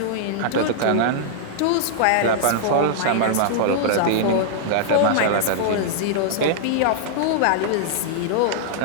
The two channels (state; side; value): different; both; correlation -0.01